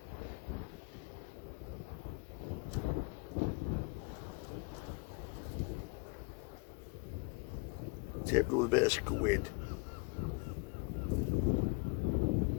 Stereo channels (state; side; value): quieter; right; 31.0 dB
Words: Tipped with a bit of squid.